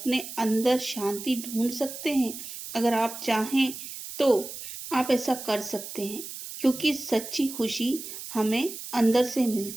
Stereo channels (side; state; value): right; noise; hiss, 10 dB below the sound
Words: अंदर शांति ढूंढ सकते हैं। अगर आप चाहें तो आप ऐसा कर सकते हैं, क्योंकि सच्ची खुशी हमें अंदर से